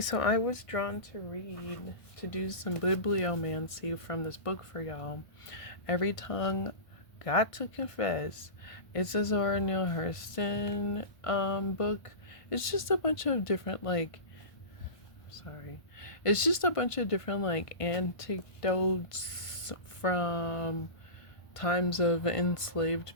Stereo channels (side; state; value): right; late; 1.5 ms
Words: I was drawn to read, to do some bibliomancy from this book for y'all. Every Tongue Got to Confess. It's a Zora Neale Hurston book. It's just a bunch of different, like, sorry. It's just a bunch of different, like, anecdotes from times of